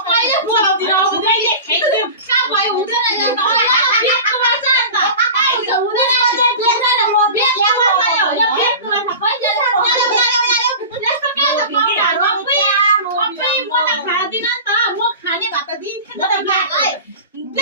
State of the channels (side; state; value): both; inverted; correlation -0.33